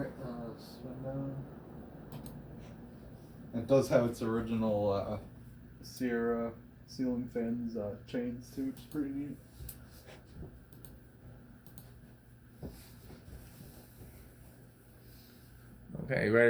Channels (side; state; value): both; identical; correlation 1.00